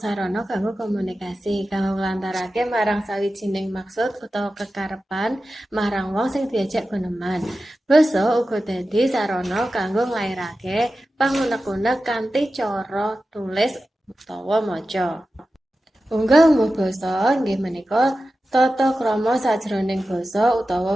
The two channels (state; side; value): normal; both; correlation 0.93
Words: kanggo komunikasi, kanggo nglantarake marang sawijining maksud utawa kekarepan marang wong sing diajak guneman. Basa uga dadi sarana kanggo nglairake pangunek-unek kanthi cara tulis utawa maca. Unggah-ungguh basa inggih menika tata krama sajroning basa